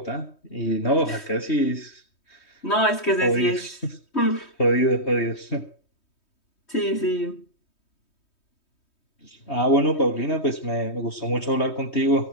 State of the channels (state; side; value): late; right; 3.2 ms